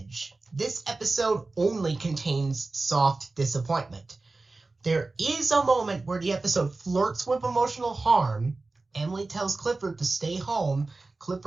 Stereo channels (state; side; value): quieter; left; 3.4 dB